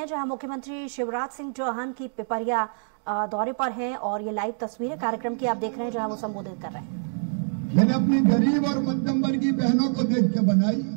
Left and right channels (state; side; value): silent; left; digital silence